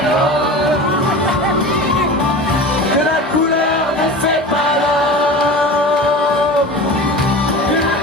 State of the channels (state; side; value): normal; both; correlation 0.33